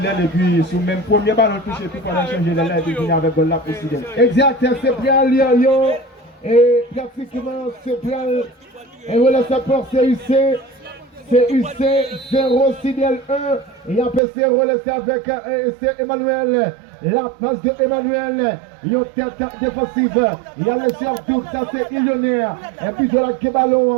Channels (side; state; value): left; drops out; at 14.2 s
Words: et puis sur le même premier ballon touché, puis pendant changer l'aile et puis venir avec goal là pour Sidel. Exact, c'est bien Lyon et pratiquement c'est bien. Et voilà, ça porte CUC. CUC 0, Sidel 1. Et après c'est relancé avec Emmanuel. La passe de Emmanuel. Il y a une tête défensive. Il y a le sur double, ça c'est Illionnaire. Et puis de la